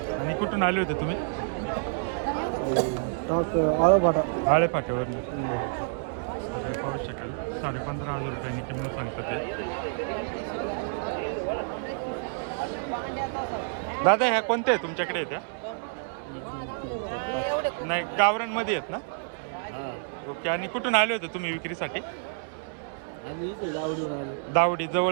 आणि कुठून आले होते तुम्ही? आळोपाटा. आळे फाट्यावरून. तर पाहू शकाल 15,500 रुपयांनी किंमत सांगतं ते. दादा ह्या कोणत्या आहे तुमच्याकडे त्या? नाही गावरांमध्ये आहेत ना? ओके. आणि कुठून आले होते तुम्ही विक्रीसाठी? आम्ही इथे दावडीवर आलो. दावडी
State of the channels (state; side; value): silent; left; 59 dB below the other